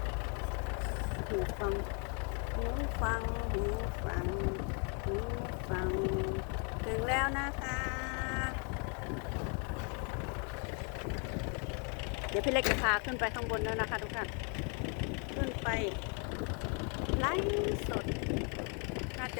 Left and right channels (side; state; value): right; quieter; 37.8 dB